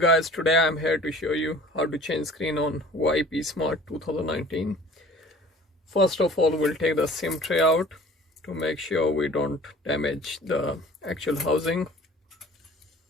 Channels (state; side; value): normal; both; correlation 0.48